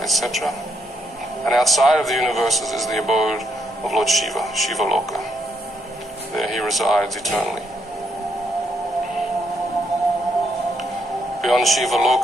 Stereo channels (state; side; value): normal; both; correlation 0.75